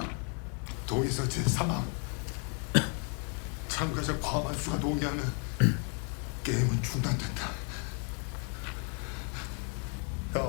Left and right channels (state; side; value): quieter; right; 39.7 dB